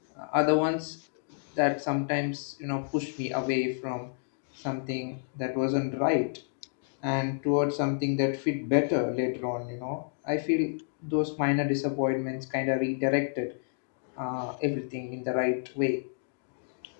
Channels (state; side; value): silent; right; digital silence